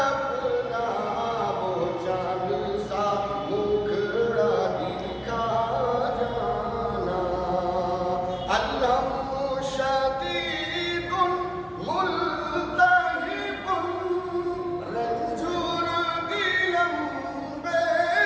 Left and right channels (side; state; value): both; identical; correlation 1.00